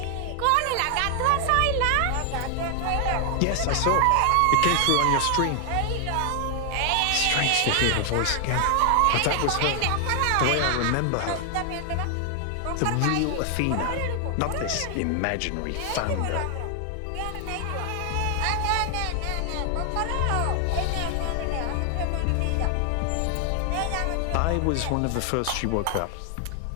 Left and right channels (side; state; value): both; different; correlation 0.00